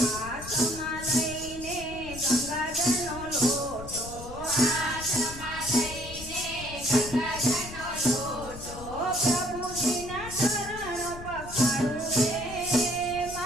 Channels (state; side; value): noise; left; rumble, 13 dB below the sound